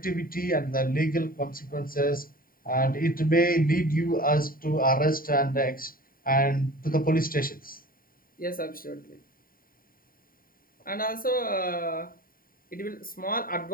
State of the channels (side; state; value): right; late; 0.41 ms